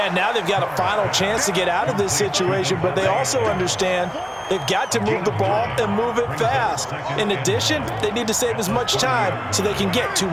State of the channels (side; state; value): both; identical; correlation 1.00